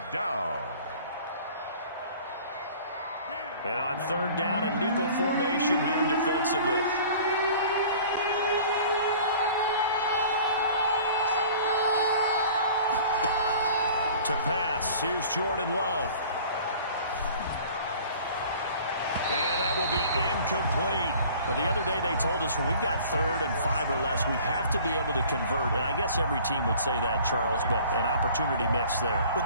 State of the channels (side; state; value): both; inverted; correlation -0.48